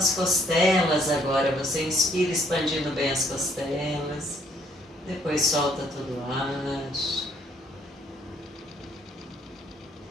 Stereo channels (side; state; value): both; normal; correlation 0.66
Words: costelas agora, você inspira expandindo bem as costelas, depois solta todo o ar.